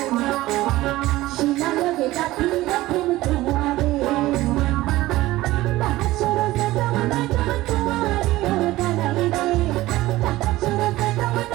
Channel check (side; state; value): left; quieter; 17.3 dB